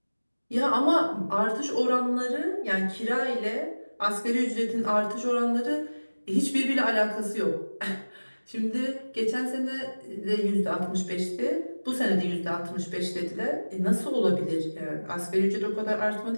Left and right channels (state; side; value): inverted; both; correlation -1.00